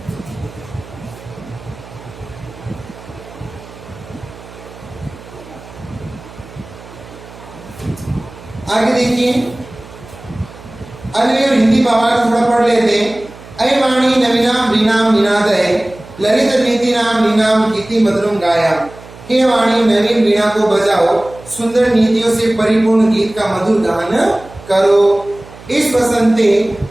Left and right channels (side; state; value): right; noise; hum, 19 dB below the sound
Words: आगे देखिए, अन्य और हिंदी भावार्थ थोड़ा पढ़ लेते हैं। अय वाणी नवीनाम वीणाम निनादय ललित नीति नाम नीनाम गीति मधुरम गाया। हे वाणी नवीन वीणा को बजाओ, सुंदर नीतियों से परिपूर्ण गीत का मधुर गान करो। इस बसंते